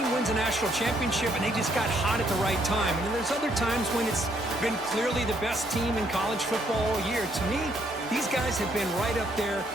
wins a national championship and they just got hot at the right time. And then there's other times when it's been clearly the best team in college football all year. To me, these guys have been right up there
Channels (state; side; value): normal; both; correlation 0.70